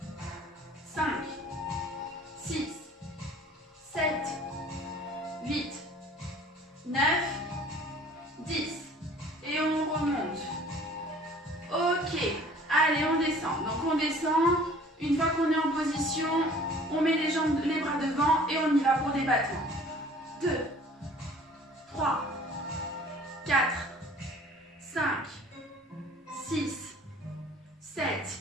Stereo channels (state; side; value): normal; both; correlation 0.50